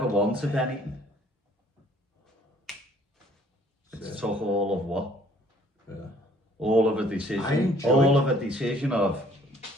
wanted anything, it's took all of what? Yeah. All of a decision of,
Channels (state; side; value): normal; both; correlation 0.60